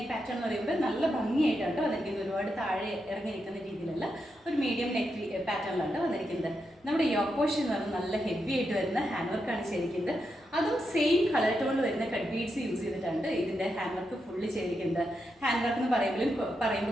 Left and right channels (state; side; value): normal; both; correlation 0.85